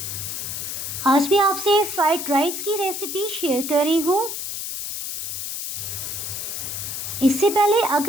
आज मैं आपसे फ्राइड राइस की रेसिपी शेयर कर रही हूँ। इससे पहले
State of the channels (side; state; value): left; noise; hiss, 5 dB below the sound